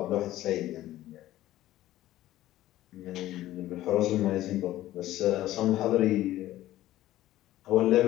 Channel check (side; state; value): right; quieter; 14.8 dB